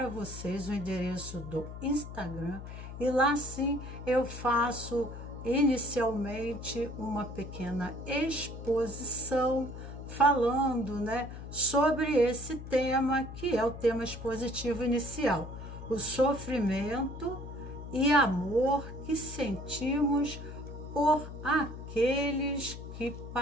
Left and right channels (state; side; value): noise; left; hum, 10 dB below the sound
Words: vocês o endereço do Instagram, e lá sim eu faço inicialmente uma pequena exposição falando, sobre esse tema, que é o tema expositivo inicial, o sofrimento e amor que sentimos por aqueles que